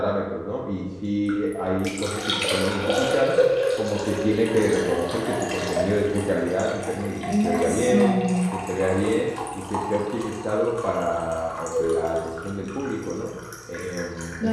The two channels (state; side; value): identical; both; correlation 1.00